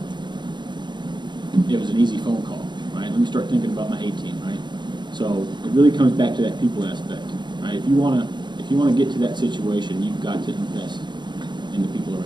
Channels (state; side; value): late; left; 0.22 ms